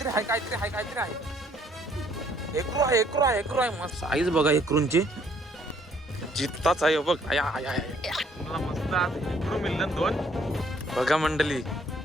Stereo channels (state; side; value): normal; both; correlation 0.64